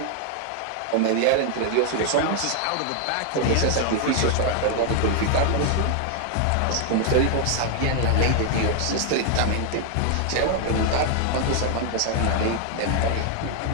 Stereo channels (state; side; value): different; both; correlation 0.00